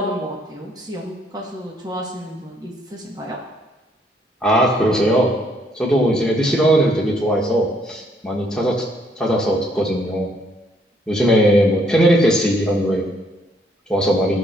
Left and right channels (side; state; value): both; normal; correlation 0.68